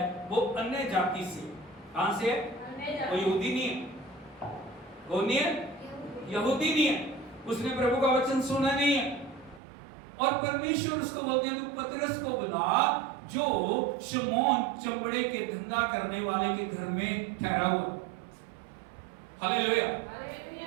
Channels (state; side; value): drops out; left; at 9.6 s